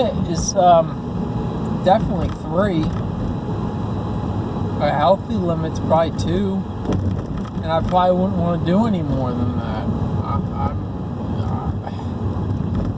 is definitely 3. A healthy limit's probably 2. And I probably wouldn't want to do any more than that.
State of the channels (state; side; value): identical; both; correlation 1.00